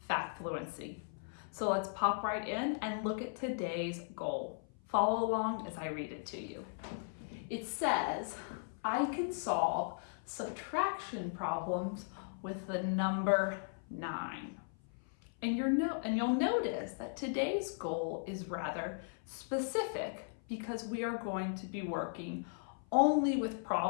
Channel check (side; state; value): right; silent; 53 dB below the other